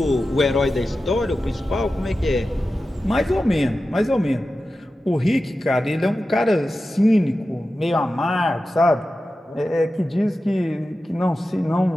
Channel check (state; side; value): normal; both; correlation 0.93